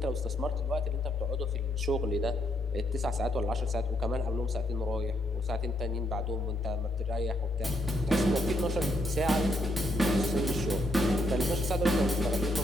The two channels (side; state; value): both; normal; correlation 0.75